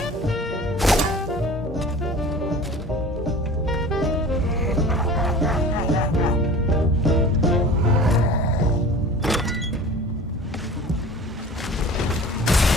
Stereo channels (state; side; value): normal; both; correlation 0.41